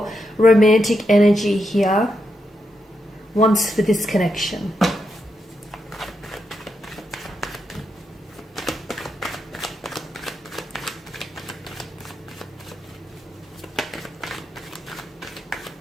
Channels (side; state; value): both; normal; correlation 0.84